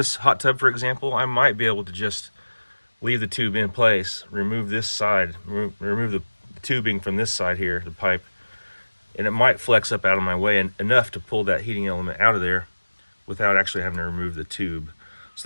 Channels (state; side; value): inverted; both; correlation -1.00